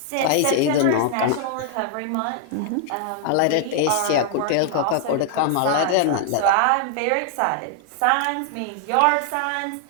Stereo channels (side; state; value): both; different; correlation 0.00